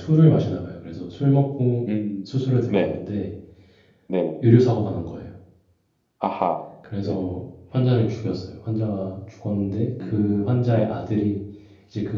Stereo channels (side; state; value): both; identical; correlation 1.00